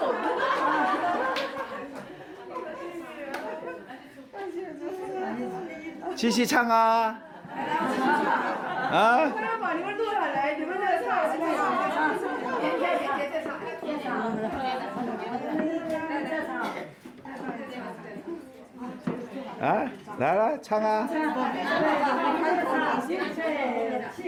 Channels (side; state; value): both; identical; correlation 1.00